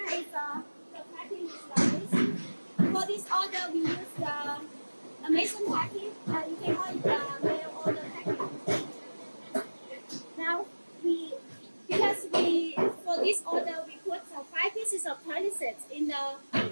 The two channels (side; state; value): both; inverted; correlation -1.00